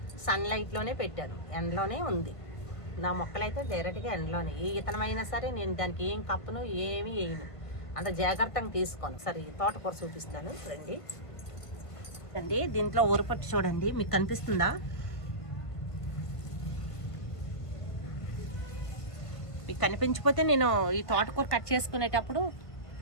సన్లైట్లోనే పెట్టాను, ఎండలోనే ఉంది. నా మొక్కలైతే డైరెక్ట్గా ఎండలోనే. ఏ ఇతనమైనా సరే నేను దానికి ఏం కప్పను, ఏమీ వేయను. అంత జాగ్రత్తగా తీసుకోను. సరే తోటకూర చూపిస్తాను రండి. అండి దీంట్లో ఊరపట్టు చూడండి, మీకు కనిపిస్తుందా? మీకు కనిపించకపోతే నేను ఈ తోటకూర కట్ చేసుకునేటప్పుడు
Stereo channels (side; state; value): right; late; 1.5 ms